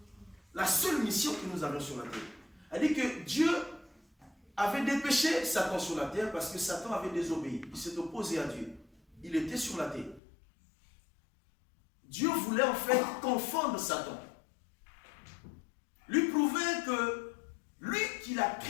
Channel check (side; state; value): right; drops out; at 10.2 s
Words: la seule mission que nous avons sur la terre. Elle dit que Dieu avait dépêché Satan sur la terre parce que Satan avait désobéi. Il s'est opposé à Dieu. Il était sur la terre. Dieu voulait en fait confondre Satan. Lui prouver que lui qui l'a